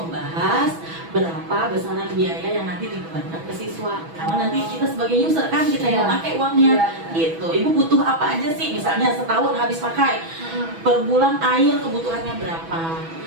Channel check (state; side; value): late; left; 6.1 ms